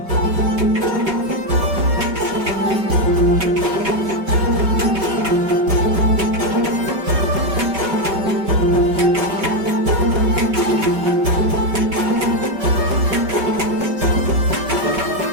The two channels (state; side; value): late; left; 5.4 ms